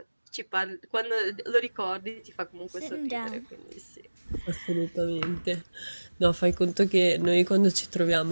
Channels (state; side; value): inverted; both; correlation -1.00